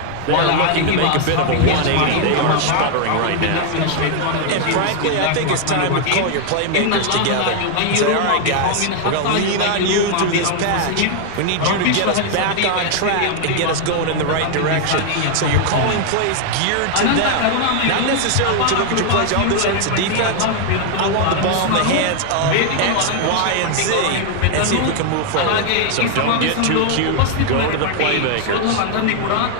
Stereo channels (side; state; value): both; different; correlation 0.00